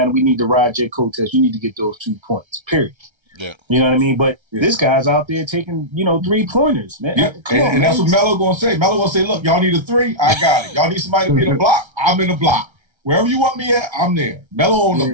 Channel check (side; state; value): left; late; 1.3 ms